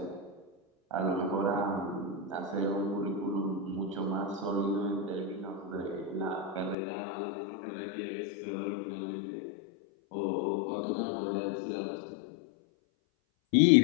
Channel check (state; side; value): drops out; right; at 6.8 s